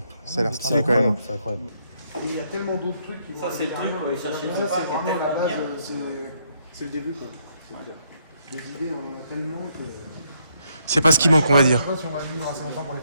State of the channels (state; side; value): inverted; both; correlation -0.73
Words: Ça a l'air stylé quand même. C'est incroyable. Et il y a tellement d'autres trucs qui vont Ça, c'est le truc, arriver. quoi, ils cherchaient Ça, pas, c'est qui est vraiment la tellement base, bien. c'est le début, quoi. Les idées, on en a tellement que. C'est pas ce qui manque, on va Je dire. sais pas si on va vivre assez longtemps pour les